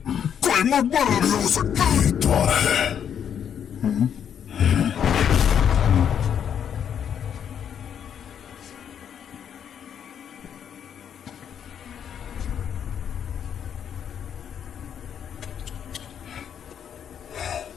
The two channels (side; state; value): right; quieter; 8.5 dB